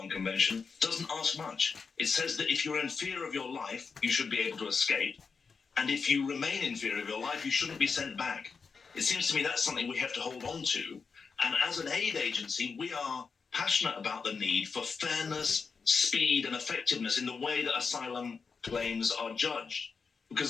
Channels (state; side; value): quieter; right; 5.2 dB